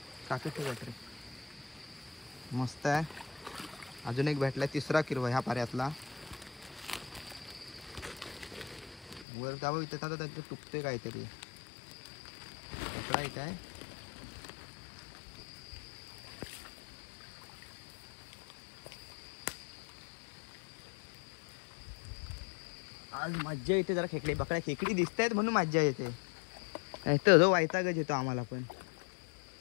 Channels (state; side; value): drops out; right; at 9.2 s